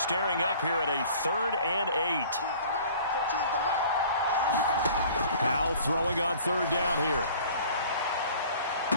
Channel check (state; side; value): inverted; both; correlation -0.49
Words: up here at a 3rd and 8. Howell throwing on 3rd down here.